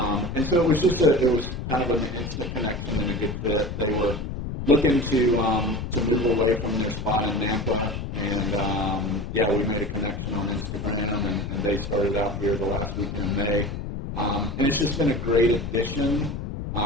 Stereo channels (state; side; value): noise; left; rumble, 6 dB below the sound